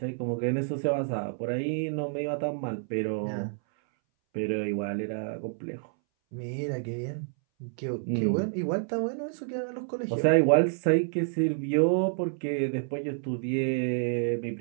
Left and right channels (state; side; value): silent; left; 59 dB below the other